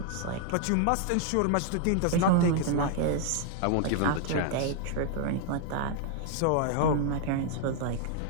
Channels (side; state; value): both; different; correlation 0.00